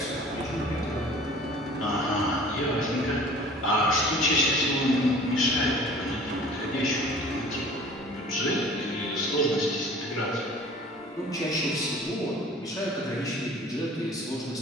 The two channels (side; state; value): both; normal; correlation 0.47